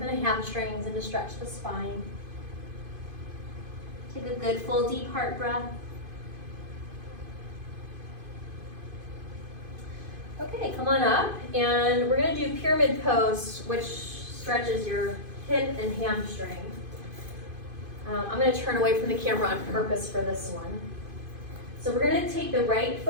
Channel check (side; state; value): left; late; 2.5 ms